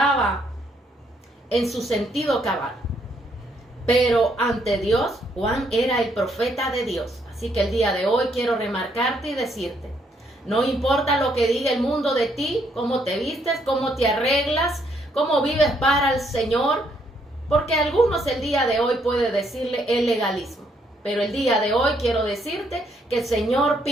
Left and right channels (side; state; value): both; normal; correlation 0.72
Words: en su sentido cabal. Pero ante Dios, Juan era el profeta de Dios. Así que el día de hoy quiero remarcarte y decirte, no importa lo que diga el mundo de ti, cómo te vistes, cómo te arreglas, cómo vives para el Señor, porque algunos el día de hoy puede decirle el legalismo. Pero el día de hoy quiero decirte que el Señor